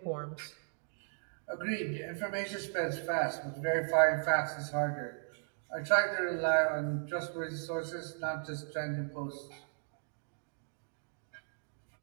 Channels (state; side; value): silent; left; digital silence